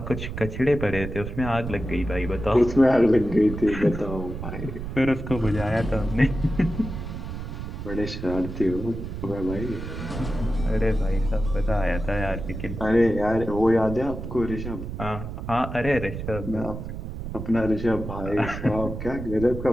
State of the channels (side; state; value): right; noise; rumble, 7 dB below the sound